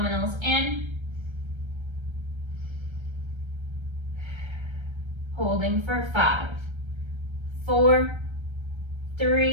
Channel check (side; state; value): left; late; 1.3 ms